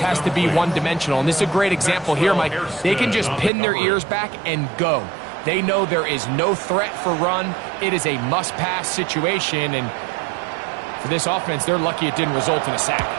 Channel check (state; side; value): drops out; left; at 3.5 s